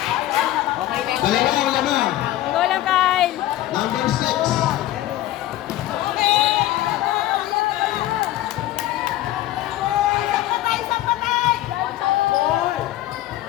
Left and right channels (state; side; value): quieter; right; 14.7 dB